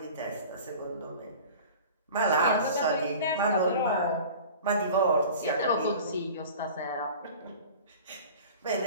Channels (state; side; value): inverted; both; correlation -0.40